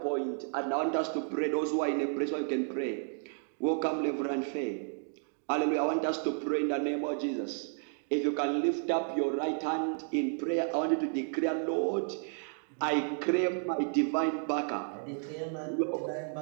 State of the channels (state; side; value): silent; left; 56 dB below the other